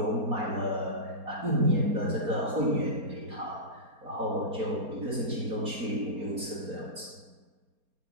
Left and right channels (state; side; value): late; left; 4.3 ms